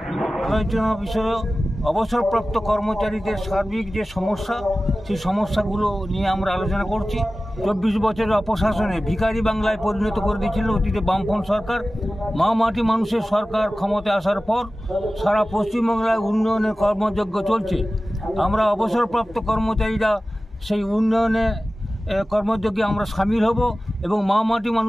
আলোচনা বিষয়ে অবসরপ্রাপ্ত কর্মচারীদের সার্বিক যে সমস্যা, সেই সমস্যাগুলো নিয়ে আমরা আলোচনা করছি। 24 বছরের অপশাসনে ভিখারি বাংলায় পরিণত করে দিয়েছিল অতীতে বামফ্রন্ট সরকার। মা মাটি মানুষের সরকার ক্ষমতায় আসার পর সারা পশ্চিমবাংলায় উন্নয়নের কর্মযজ্ঞ চলছে। আমরা অবসরপ্রাপ্ত কর্মচারীরা সেই উন্নয়নে কর্মযজ্ঞে আমরা সামিল হব এবং মা মাটি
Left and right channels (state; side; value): normal; both; correlation 0.96